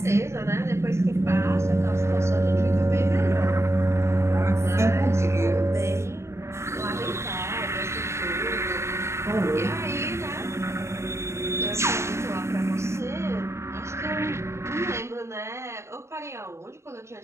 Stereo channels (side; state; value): left; late; 0.13 ms